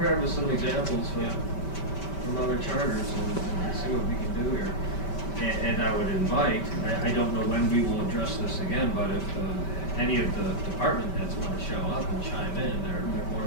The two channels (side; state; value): right; late; 5.2 ms